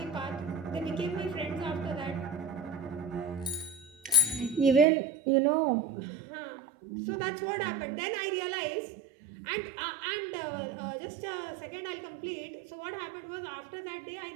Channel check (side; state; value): left; drops out; at 4.9 s